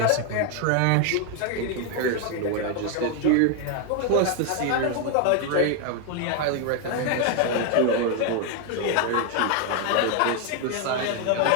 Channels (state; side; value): different; both; correlation 0.01